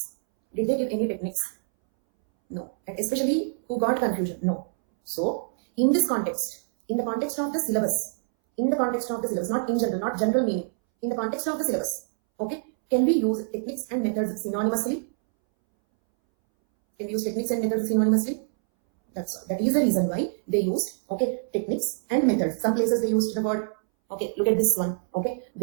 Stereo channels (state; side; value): silent; left; 61 dB below the other